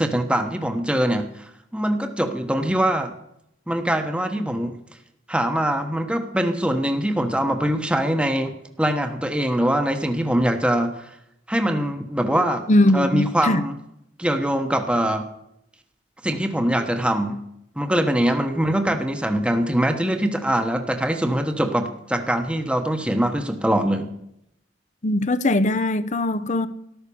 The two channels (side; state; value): both; normal; correlation 0.82